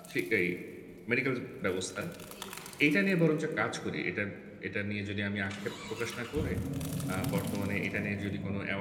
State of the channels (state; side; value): identical; both; correlation 1.00